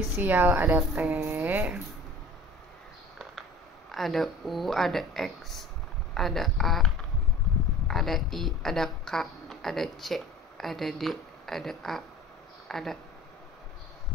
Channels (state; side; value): normal; both; correlation 0.43